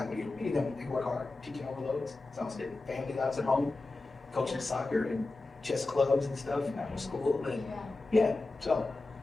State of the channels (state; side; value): quieter; right; 3.3 dB